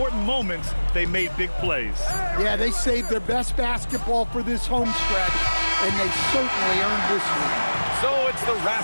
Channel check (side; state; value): both; inverted; correlation -1.00